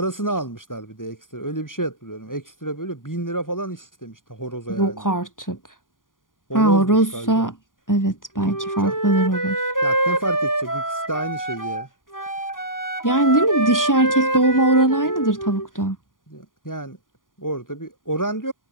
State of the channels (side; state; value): right; late; 0.89 ms